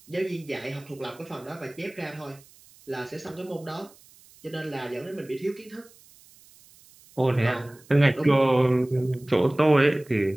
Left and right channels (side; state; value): right; noise; hiss, 26 dB below the sound